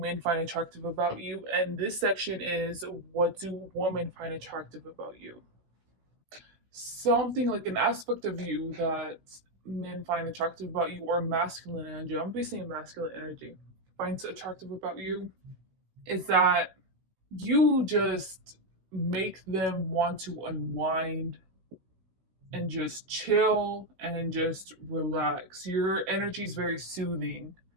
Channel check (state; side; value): late; left; 16 ms